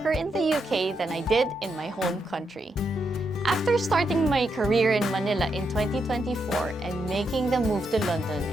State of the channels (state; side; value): normal; both; correlation 0.82